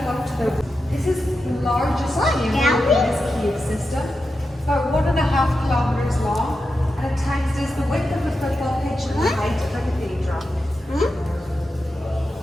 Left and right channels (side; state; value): both; normal; correlation 0.89